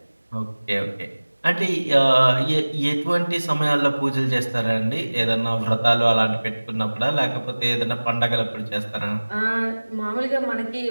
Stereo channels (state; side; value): inverted; both; correlation -1.00